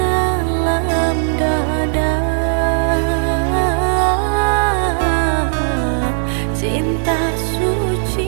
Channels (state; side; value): silent; left; digital silence